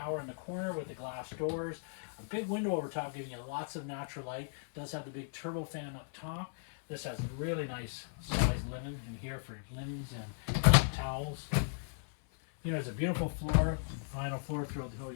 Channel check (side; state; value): right; silent; 53 dB below the other